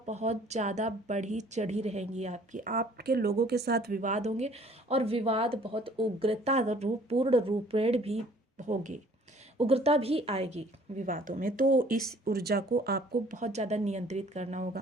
बहुत ज़्यादा बढ़ी चढ़ी रहेंगी आपकी, आपके लोगों के साथ विवाद होंगे और विवाद बहुत उग्रता पूर्ण रूपेण भी होंगे, उग्रता भी आएगी विवादों में। तो इस ऊर्जा को आपको बहुत ज़्यादा नियंत्रित करना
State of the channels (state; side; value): normal; both; correlation 0.55